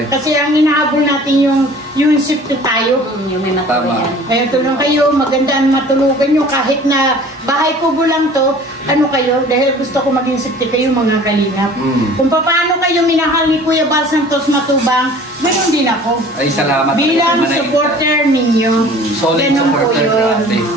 Kasi ang inahabol natin yung safety tayo. Yung may Tama. matuluyan. Kaya tulong kayo, maganda ang matulugan nyo kahit na bahay kubo lang to, kayo, dahil gusto ko maging safety kayo mga kalingap. Kung paano kayo minahal ni Kuya Bal Santos Matubang, ganoon din ako. Ay, salamat. Bilang Manay. supporter ninyo. Solid Ganun po supporter yun. natin.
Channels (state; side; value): normal; both; correlation 0.47